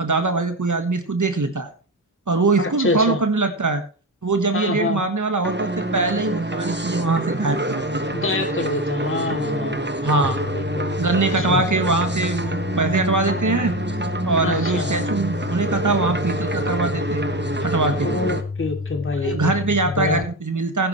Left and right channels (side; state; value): both; normal; correlation 0.19